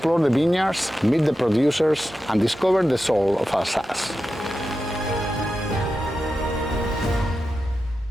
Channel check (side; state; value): both; normal; correlation 0.91